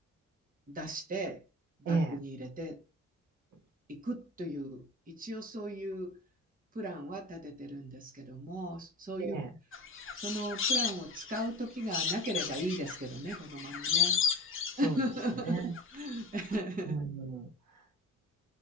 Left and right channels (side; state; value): both; normal; correlation 0.36